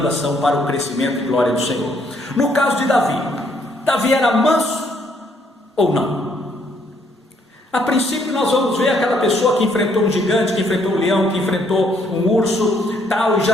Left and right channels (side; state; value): both; normal; correlation 0.69